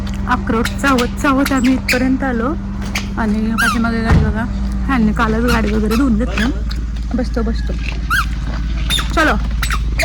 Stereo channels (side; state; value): both; identical; correlation 1.00